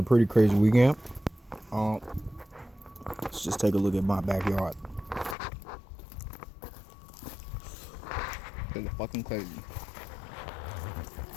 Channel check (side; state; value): right; drops out; at 5.4 s